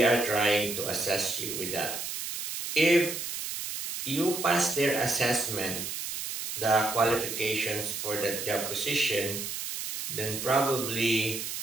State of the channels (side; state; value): right; noise; hiss, 5 dB below the sound